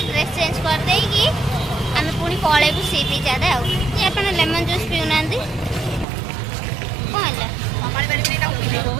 ड्रेस चेंज कर देई की आम पुणी पलैबू सी बीच आड़े आप लेमन जूस पीऊना कौन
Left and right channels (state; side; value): drops out; left; at 6.1 s